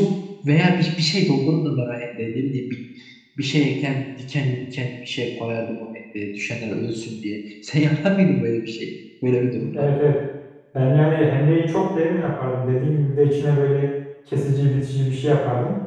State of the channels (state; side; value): identical; both; correlation 1.00